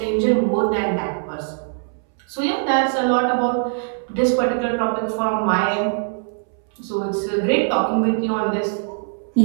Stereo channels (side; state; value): left; silent; 65 dB below the other